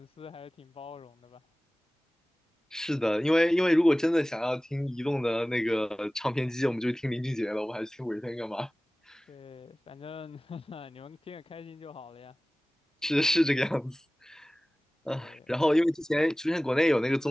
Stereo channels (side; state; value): both; normal; correlation 0.98